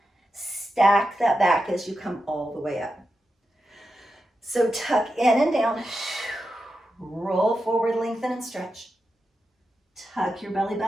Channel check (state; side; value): normal; both; correlation 0.89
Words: Stack that back as you come all the way up. So tuck in and down, roll forward, lengthen and stretch. Tuck your belly